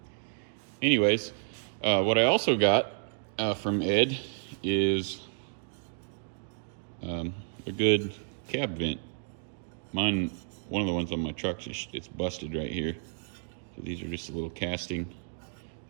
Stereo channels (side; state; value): left; silent; digital silence